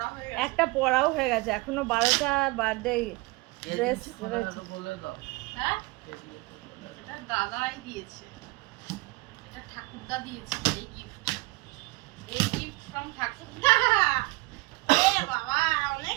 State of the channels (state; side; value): quieter; left; 23.6 dB